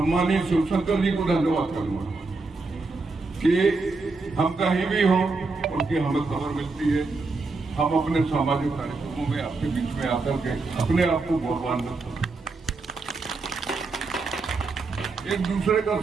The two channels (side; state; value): left; quieter; 3.8 dB